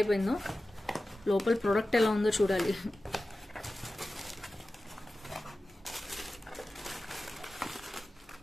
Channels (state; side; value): normal; both; correlation 0.95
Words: లోపల ప్రోడక్ట్ ఎలా ఉందో చూడాలి.